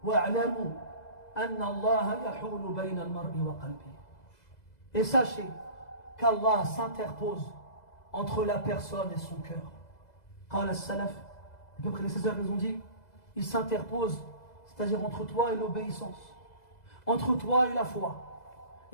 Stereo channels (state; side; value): late; right; 2.0 ms